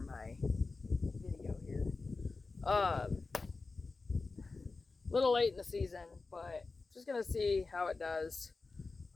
video here. Little late in the season, but just gonna see how it does.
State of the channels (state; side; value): quieter; right; 3.9 dB